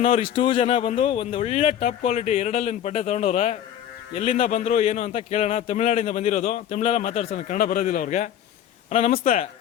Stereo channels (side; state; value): right; quieter; 10.4 dB